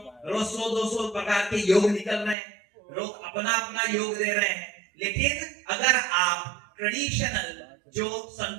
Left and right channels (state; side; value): drops out; left; at 2.4 s